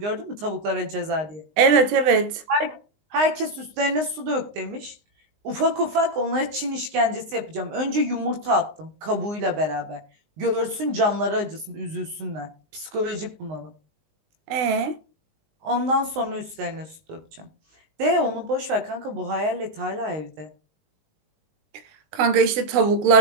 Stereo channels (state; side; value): late; left; 19 ms